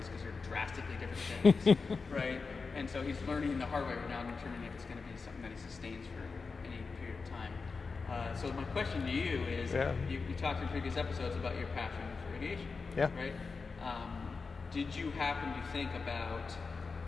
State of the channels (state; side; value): quieter; right; 4.6 dB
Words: because they're drastically different things, right? And so he's learning the hard way right now, determining if it's going to be something that he sustains for any period of time. So my question to you is, you talked in previous episodes about your passion for aviation, right? Did you happen to think about